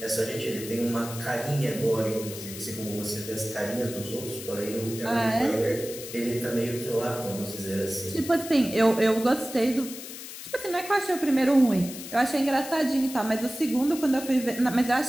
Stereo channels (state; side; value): noise; left; hiss, 11 dB below the sound